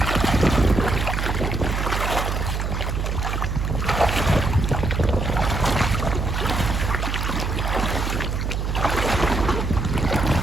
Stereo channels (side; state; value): right; noise; hum, 1 dB below the sound